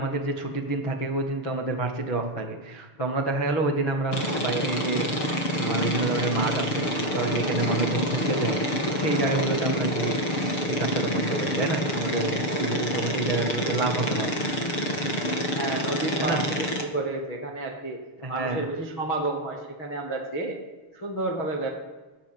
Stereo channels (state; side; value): late; right; 6.7 ms